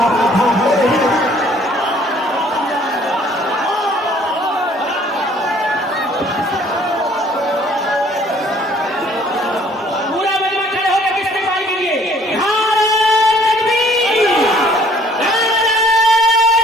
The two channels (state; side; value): normal; both; correlation 0.58